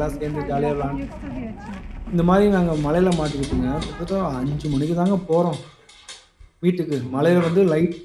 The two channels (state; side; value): identical; both; correlation 1.00